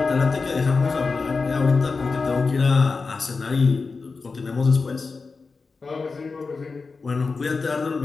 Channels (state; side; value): quieter; right; 4.4 dB